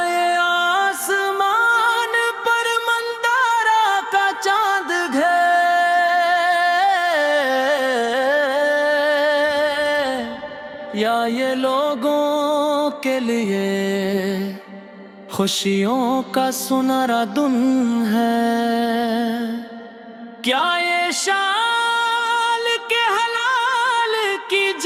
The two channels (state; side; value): identical; both; correlation 1.00